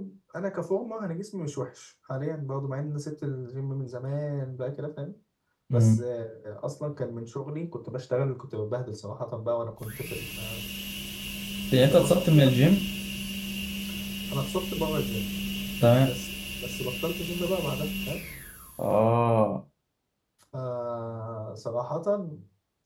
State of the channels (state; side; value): identical; both; correlation 1.00